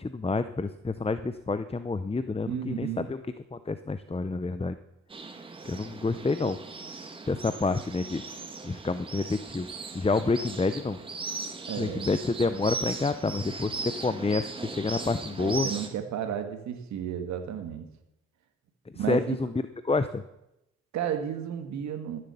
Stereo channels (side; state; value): both; normal; correlation 0.58